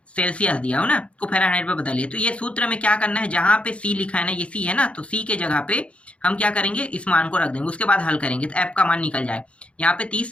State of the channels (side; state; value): right; late; 0.061 ms